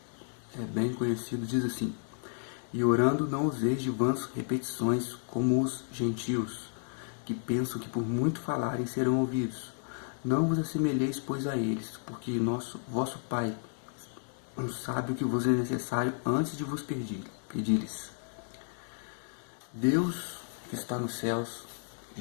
É bem conhecido, diz assim: E orando não useis de vãs repetições como os gentios, que pensam que por muito falarem serão ouvidos. Não vos assemelheis, pois, a eles, porque vosso Pai sabe o que vos é necessário antes de vos pedir-lhes. Deus que está nos céus,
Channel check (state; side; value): silent; right; digital silence